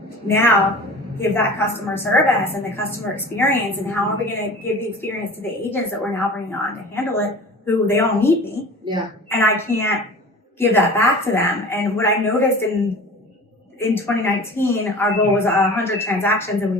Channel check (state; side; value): normal; both; correlation 0.39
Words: now give that customer service and the customer experience? And how are we going to give the experience to the agents that we're now bringing on to handle it, who they all need me. Yeah. And I can't give that back to them. And what I noticed in 2019, our goal was 100 transactions and we